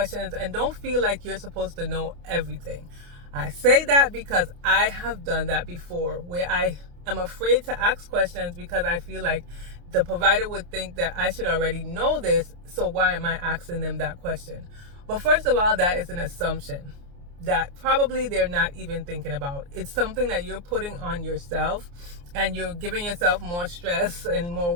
and don't feel like you're supposed to know everything. I say that because I have done that before, where I am afraid to ask questions because I feel like the provider would think that I should already know this, so why am I asking them that question? But first of all, that is an assumption that probably they're not even thinking about. It's something that you're putting on yourself, and you're giving yourself more stress and more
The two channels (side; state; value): left; late; 29 ms